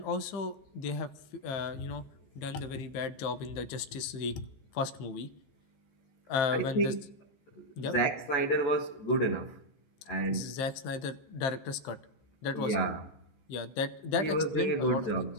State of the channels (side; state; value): right; late; 15 ms